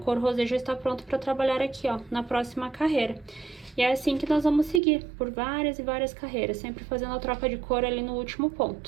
rosé já está pronto para trabalhar aqui, ó, na próxima carreira. E é assim que nós vamos seguir, por várias e várias carreiras, sempre fazendo a troca de cor ali no último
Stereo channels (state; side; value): drops out; left; at 4.8 s